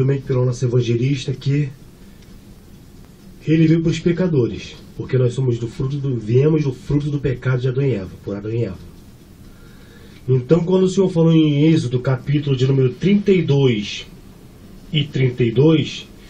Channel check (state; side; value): identical; both; correlation 1.00